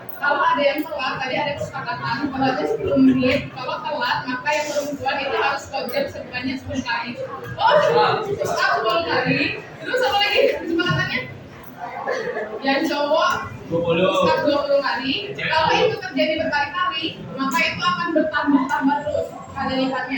Kalau ada yang telat, tadi ada kesepakatan kalau ada 10 menit, kalau telat maka yang perempuan itu harus kojam sebanyak 10 kali. Oh, terus 10 kali. Terus apa lagi kesepakatannya? Yang cowok 20 kali. Kalau itu terjadi berkali-kali, maka itu akan bertambah terus kali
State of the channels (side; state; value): both; identical; correlation 1.00